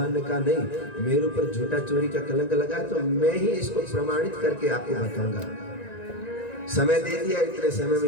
ने कहा नहीं, मेरे ऊपर झूठा चोरी का कलंक लगा है तो मैं ही इसको प्रमाणित करके आपको बताऊंगा। समय दे दिया, इतने समय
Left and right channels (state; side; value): late; right; 1.9 ms